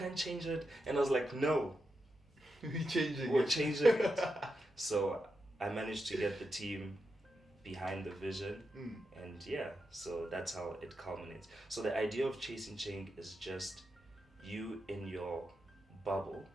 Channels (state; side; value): normal; both; correlation 0.87